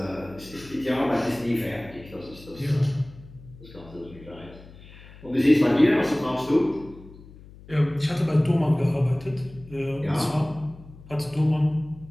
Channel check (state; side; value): noise; left; hum, 20 dB below the sound